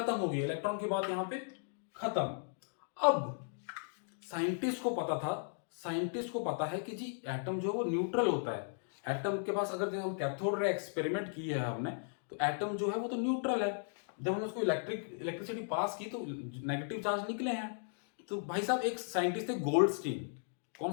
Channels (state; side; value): silent; right; digital silence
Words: हो गई, इलेक्ट्रॉन की बात यहां पे खत्म। अब साइंटिस्ट को पता था, साइंटिस्ट को पता है कि जी एटम जो है वो न्यूट्रल होता है। एटम के पास अगर हम कैथोड रे एक्सपेरिमेंट किए है हमने, तो एटम जो है वो तो न्यूट्रल है। जब हमने उसको इलेक्ट्रिसिटी पास की तो नेगेटिव चार्ज निकले हैं। तो भाई साहब एक साइंटिस्ट थे गोल्डस्टीन।